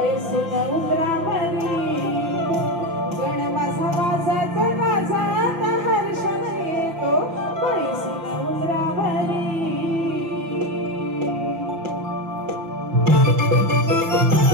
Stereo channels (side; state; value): left; late; 6.0 ms